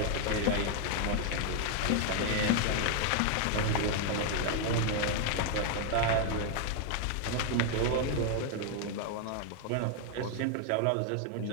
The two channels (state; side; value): different; both; correlation 0.00